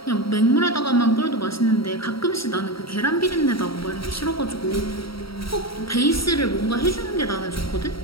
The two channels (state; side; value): late; right; 0.75 ms